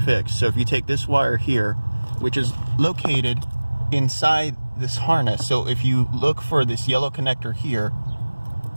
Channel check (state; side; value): inverted; both; correlation -1.00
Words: So if you take this wire here, which is located inside this harness, so if you look for this yellow connector here